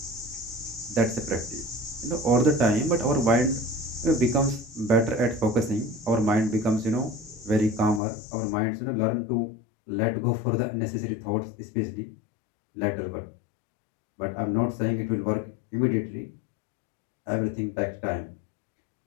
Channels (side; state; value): right; drops out; at 8.0 s